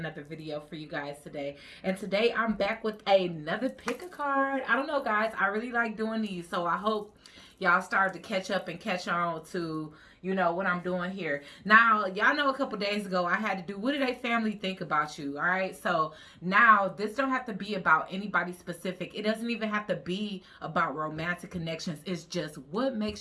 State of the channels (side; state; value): both; identical; correlation 1.00